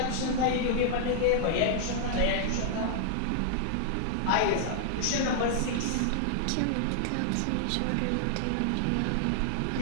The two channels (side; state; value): both; different; correlation -0.01